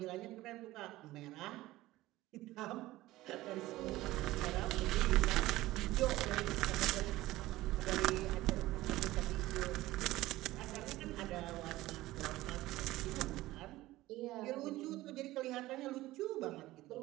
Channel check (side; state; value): left; quieter; 17.2 dB